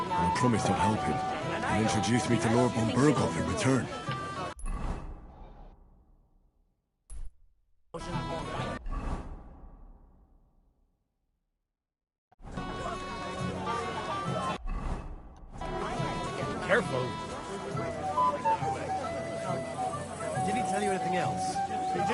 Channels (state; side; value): identical; both; correlation 1.00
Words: I promised I'd help him. He introduced me to Lord von Burghoff in return. Careful. Did he tell you anything else? He